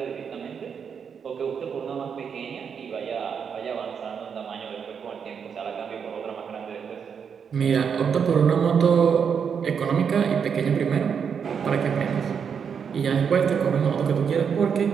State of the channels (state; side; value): quieter; left; 6.9 dB